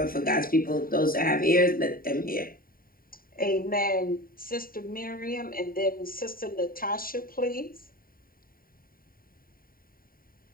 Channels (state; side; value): late; right; 0.42 ms